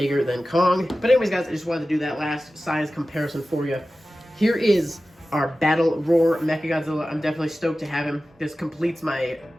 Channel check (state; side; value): normal; both; correlation 0.95